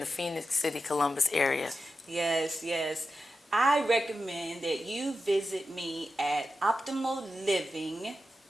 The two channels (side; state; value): both; normal; correlation 0.91